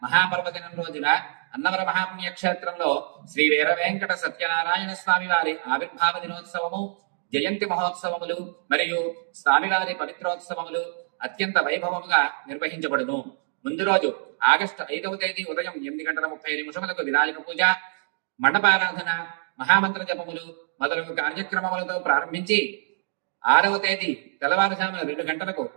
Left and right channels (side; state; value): left; silent; digital silence